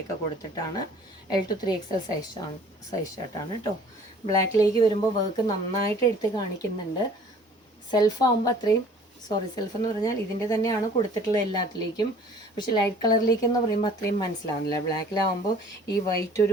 കൊടുത്തിട്ടാണ്. L to 3XL സൈസ് ഷർട്ടാണ് കേട്ടോ. ബ്ലാക്കിലേക്ക് വരുമ്പോൾ വർക്ക് നന്നായിട്ട് എടുത്ത് കാണിക്കുന്നുണ്ട്. സെൽഫ് ആകുമ്പോൾ അത്രയും സെൽഫ് എന്ന് പറഞ്ഞാൽ ഇതിൻ്റെ തന്നെയാണ് കൊടുത്തിട്ടുള്ളത് എല്ലാത്തിലേക്കും. പക്ഷെ ലൈറ്റ് കളറിലേക്ക് എന്ന് പറയുമ്പോൾ അത്രയും മനസ്സിലാവുന്നില്ല. ബ്ലാക്കിലാവുമ്പോൾ ഈ വൈറ്റ്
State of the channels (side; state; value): both; normal; correlation 0.51